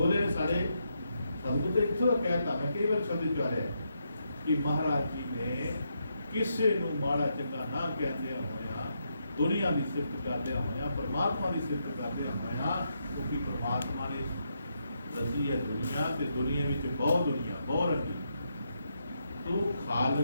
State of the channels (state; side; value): inverted; both; correlation -0.80